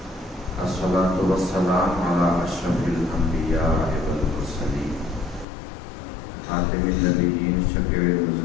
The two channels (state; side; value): drops out; right; at 5.5 s